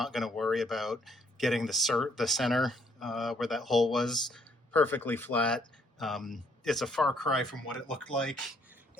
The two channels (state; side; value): normal; both; correlation 0.68